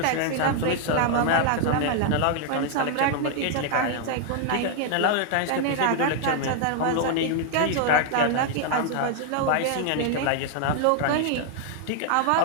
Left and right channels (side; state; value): both; different; correlation 0.00